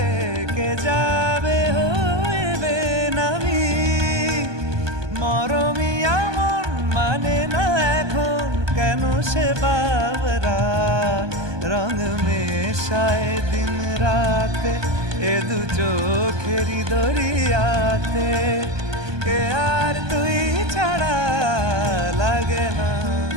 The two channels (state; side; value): late; left; 1.2 ms